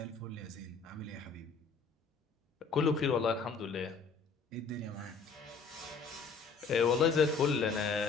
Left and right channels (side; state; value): right; quieter; 5.0 dB